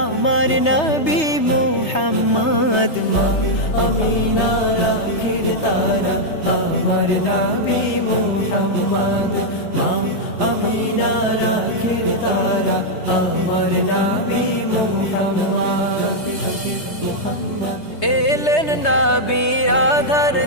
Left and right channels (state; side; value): late; right; 3.2 ms